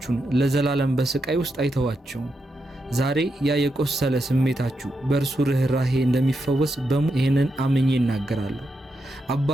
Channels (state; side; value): normal; both; correlation 0.85